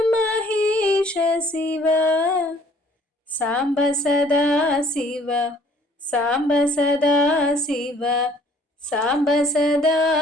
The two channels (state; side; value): normal; both; correlation 0.58